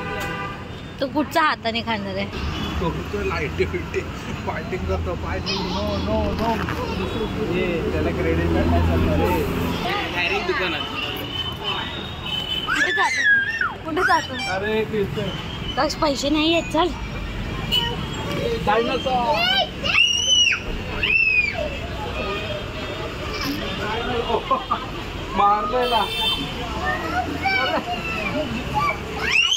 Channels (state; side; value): identical; both; correlation 1.00